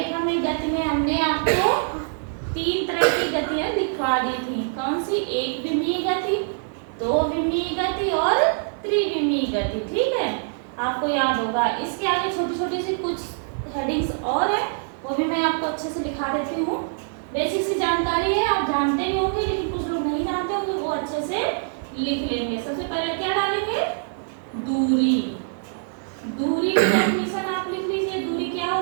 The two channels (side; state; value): left; silent; 62 dB below the other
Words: में गति में हमने आपको 3 तरह की गतियां दिखा दी थी। कौन सी? एक विमीय गति, दो विमीय गति और त्रिविमीय गति। ठीक है, आपको याद होगा। इसके आगे छोटी छोटी सी कुछ हेडिंग्स और है, वो भी मैं आपको अच्छे से लिखा देती हूँ। बेसिक सी जानकारी है, आप जानते भी होंगे, लेकिन कुछ लोग नहीं जानते होंगे, वो अच्छे से लिख लेंगे। सबसे पहले क्या डालेंगे? दूरी। दूरी की डेफिनेशन आप लिख लीजिए। दूरी क्या